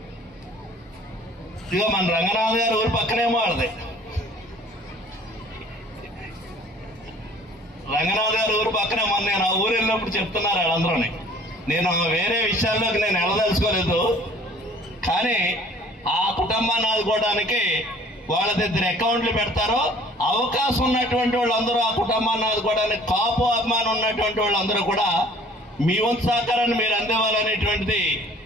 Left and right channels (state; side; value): normal; both; correlation 0.52